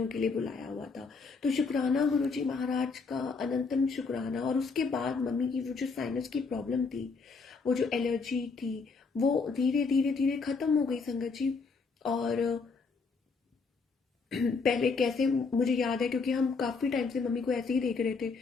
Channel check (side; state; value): right; quieter; 4.6 dB